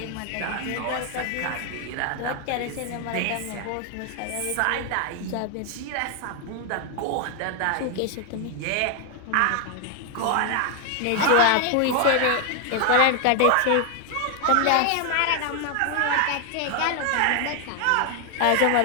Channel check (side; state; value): both; different; correlation 0.00